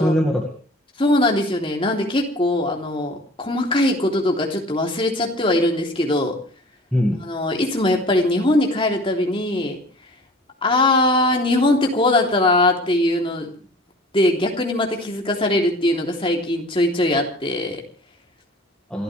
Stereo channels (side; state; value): both; normal; correlation 0.45